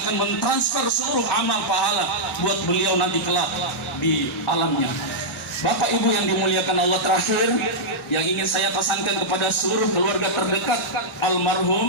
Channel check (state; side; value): normal; both; correlation -0.09